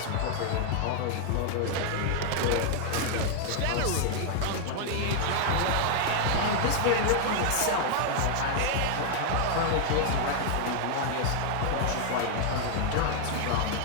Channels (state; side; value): different; both; correlation 0.00